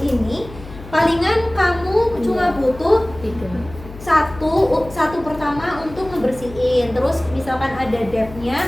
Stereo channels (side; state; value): left; noise; hum, 16 dB below the sound